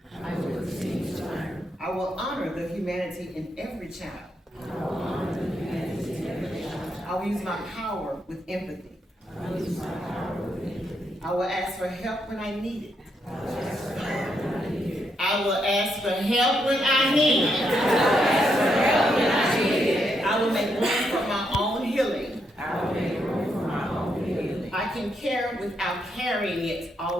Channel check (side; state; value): both; normal; correlation 0.78